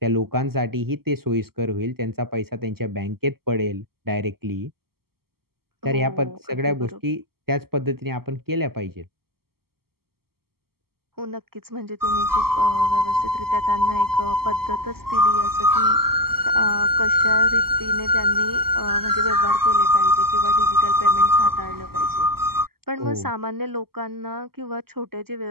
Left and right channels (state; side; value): late; left; 0.95 ms